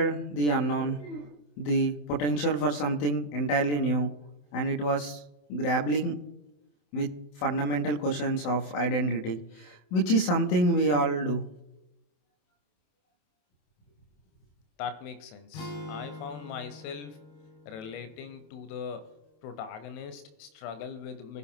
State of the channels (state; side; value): late; right; 27 ms